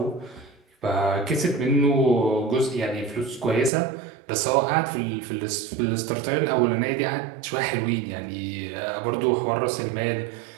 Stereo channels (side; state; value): left; drops out; at 3.7 s